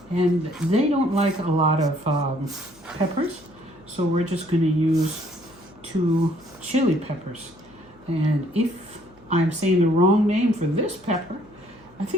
And they don't like a lot of peppers, so we're just going to use 2 chili peppers. And if I'm saying the wrong name for this pepper, I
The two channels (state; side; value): noise; left; hum, 28 dB below the sound